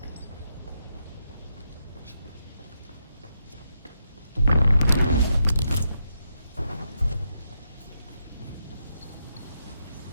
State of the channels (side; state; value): both; inverted; correlation -0.82